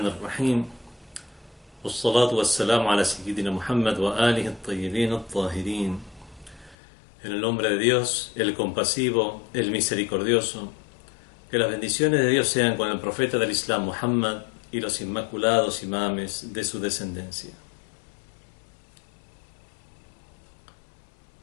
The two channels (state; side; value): drops out; right; at 6.8 s